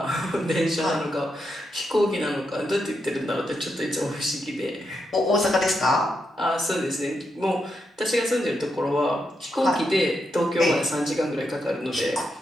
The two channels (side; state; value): both; normal; correlation 0.83